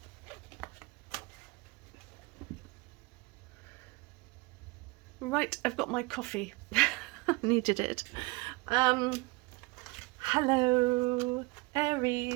Right, I've got my coffee. Needed it. Hello,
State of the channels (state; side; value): quieter; left; 25.3 dB